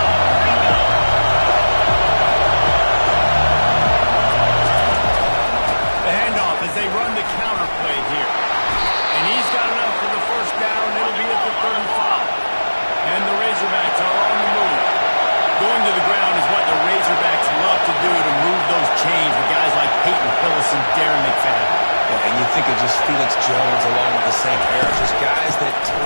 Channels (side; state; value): both; inverted; correlation -1.00